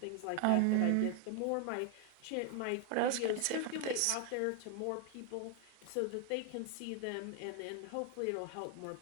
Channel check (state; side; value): different; both; correlation 0.00